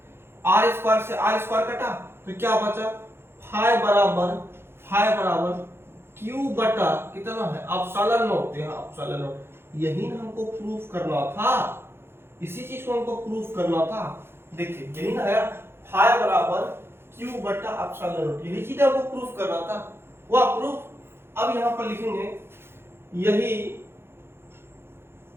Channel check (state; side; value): late; left; 0.11 ms